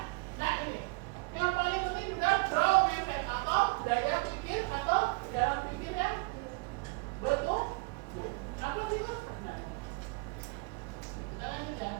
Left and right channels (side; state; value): left; quieter; 29.3 dB